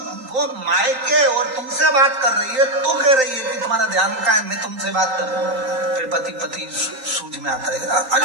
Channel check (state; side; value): late; left; 3.9 ms